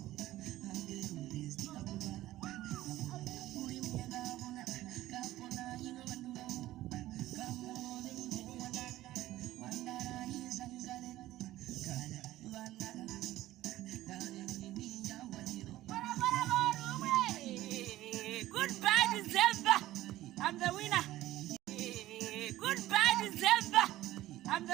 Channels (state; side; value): quieter; left; 15.4 dB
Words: Goodbye, December. I'm the winner. Goodbye, December. I'm